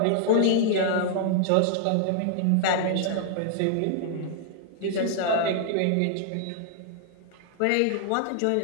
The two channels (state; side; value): different; both; correlation 0.00